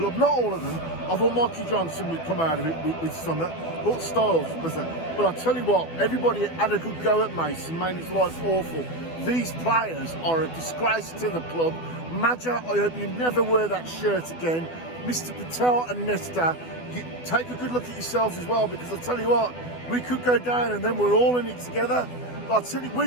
Not all of them. I thought Mikey Johnson would come out of it with some, but Styles was there. But I tell you what, everybody had a good go at Mason, made his life awful. These players are a disgrace to the club. Maja, I hope you never wear that shirt again. Mr. Patel and Nesta, you take a good look at yourselves as well, because I tell you what, we could go down and then we're all in it together. But I tell you,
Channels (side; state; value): right; late; 12 ms